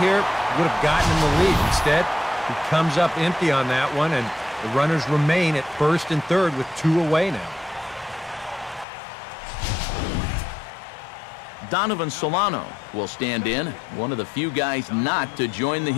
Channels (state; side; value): drops out; right; at 8.8 s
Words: here would have gotten him the lead. Instead, he comes up empty on that one, and the runners remain at first and third with 2 away now. Donovan Solano will stand in, one of the few guys not to join the